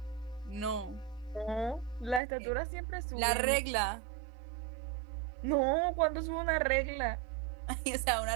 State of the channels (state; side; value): drops out; left; at 2.2 s